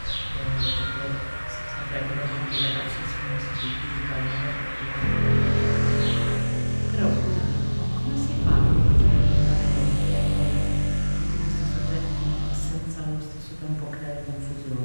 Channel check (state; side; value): inverted; both; correlation -1.00